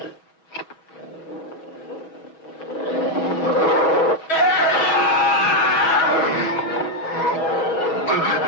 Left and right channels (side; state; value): right; late; 6.2 ms